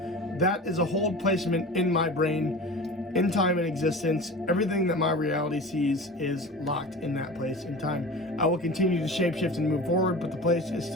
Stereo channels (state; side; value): normal; both; correlation 0.34